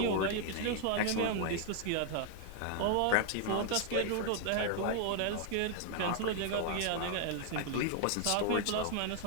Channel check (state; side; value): different; both; correlation 0.00